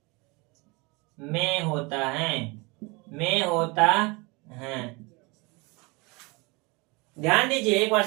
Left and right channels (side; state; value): left; quieter; 27.1 dB